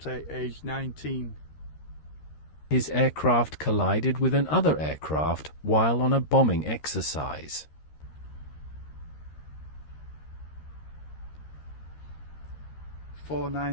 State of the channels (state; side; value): late; right; 13 ms